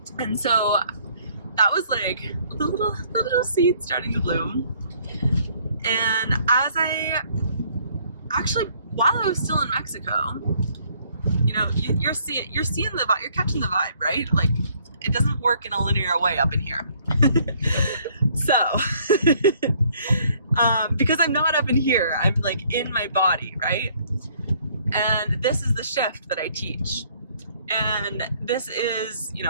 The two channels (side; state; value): both; inverted; correlation -0.63